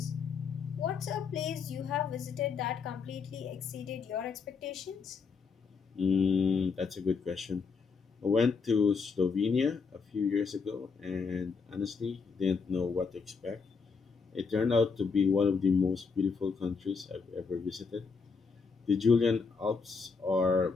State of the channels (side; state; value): right; quieter; 5.1 dB